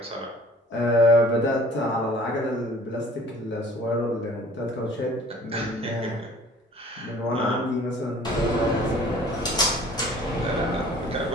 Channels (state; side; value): normal; both; correlation 0.50